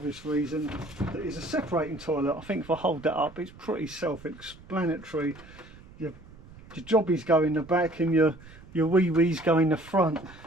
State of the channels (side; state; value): right; noise; rumble, 21 dB below the sound